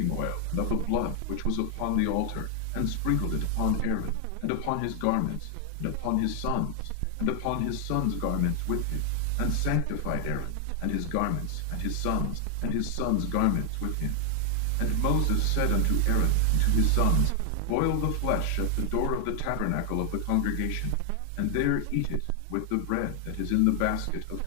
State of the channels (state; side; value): different; both; correlation 0.00